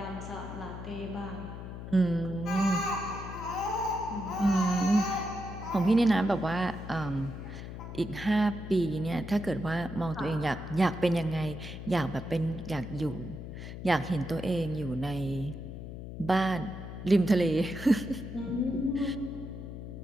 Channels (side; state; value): left; noise; hum, 9 dB below the sound